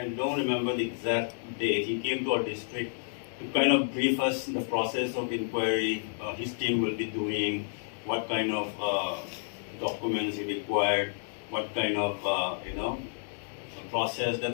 don't remember the exact date. He came to our district to kind of brief us the process of inquiry. His team will be doing, what kind of documents he required, what kind of process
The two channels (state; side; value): silent; right; 58 dB below the other